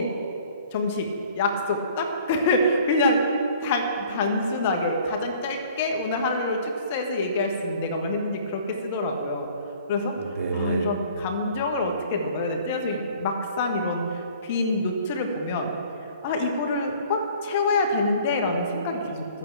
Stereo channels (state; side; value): inverted; both; correlation -0.52